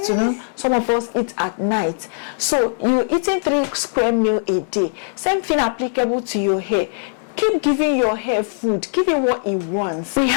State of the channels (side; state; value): right; silent; 66 dB below the other